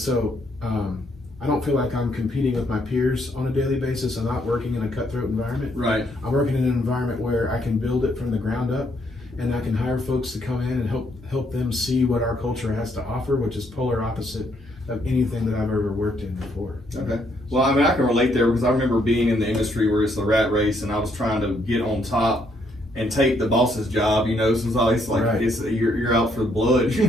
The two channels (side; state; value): both; normal; correlation 0.72